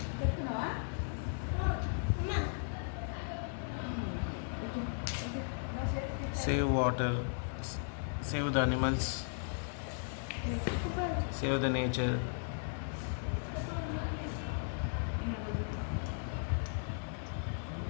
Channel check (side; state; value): right; silent; digital silence